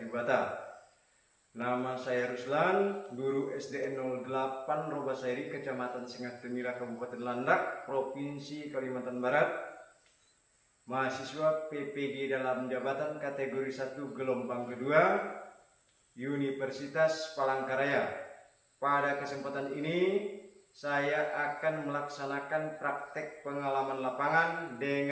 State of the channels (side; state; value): both; identical; correlation 1.00